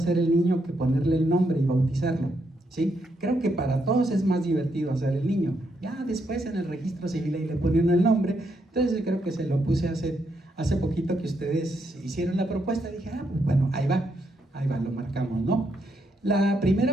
el niño que ponerle el nombre y bautizarlo, ¿sí? Creo que para todos es más divertido hacer el niño. Ya después en el registro civil ahí le ponen el nombre. Entonces creo que se lo puse hace poquito que ustedes hicieron la propuesta. Dije, pues bueno, ahí va, lo marcamos, ¿no? La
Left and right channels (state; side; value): normal; both; correlation 0.78